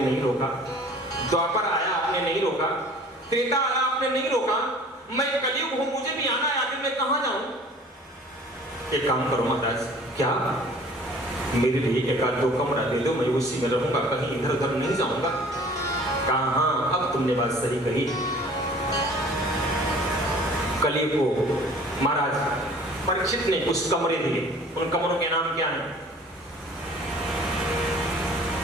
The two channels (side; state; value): both; normal; correlation 0.49